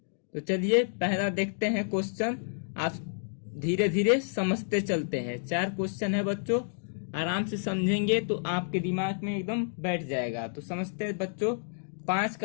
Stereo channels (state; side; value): silent; right; digital silence